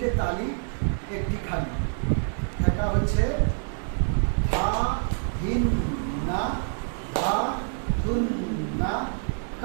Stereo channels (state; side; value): silent; left; digital silence